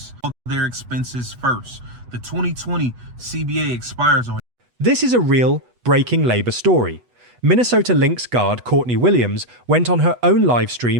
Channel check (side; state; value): left; late; 8.2 ms